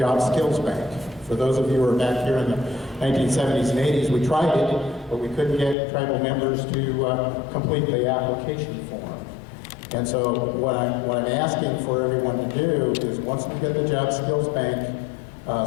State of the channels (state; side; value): drops out; right; at 5.8 s